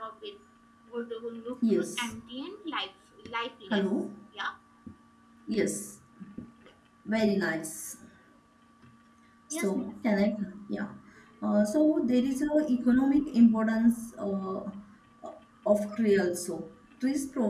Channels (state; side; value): identical; both; correlation 1.00